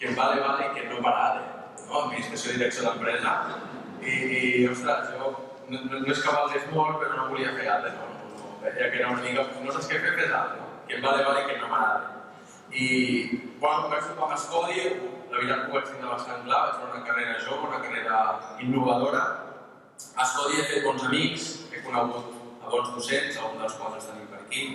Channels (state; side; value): identical; both; correlation 1.00